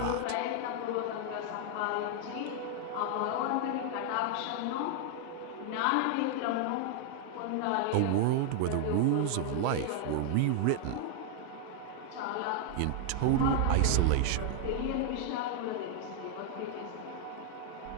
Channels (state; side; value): different; both; correlation 0.00